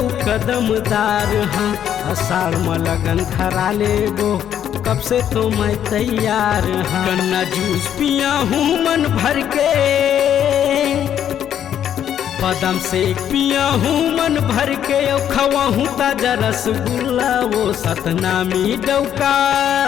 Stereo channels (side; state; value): right; quieter; 9.9 dB